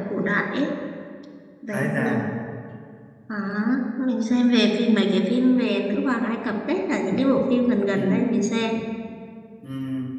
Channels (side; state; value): both; identical; correlation 1.00